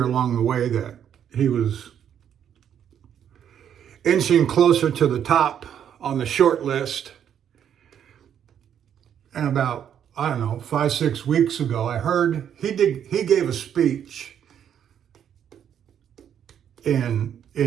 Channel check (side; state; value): left; quieter; 9.1 dB